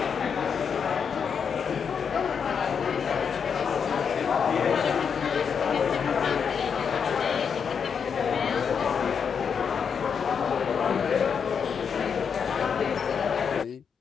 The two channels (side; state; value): right; quieter; 6.7 dB